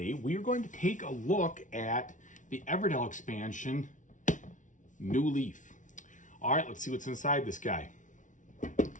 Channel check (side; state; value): right; late; 0.37 ms